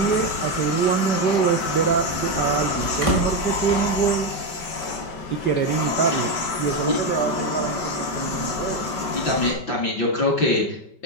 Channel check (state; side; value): late; right; 5.2 ms